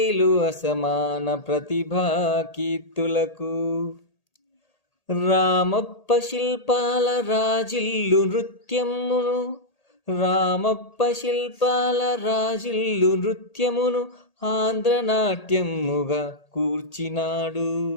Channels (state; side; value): late; right; 1.8 ms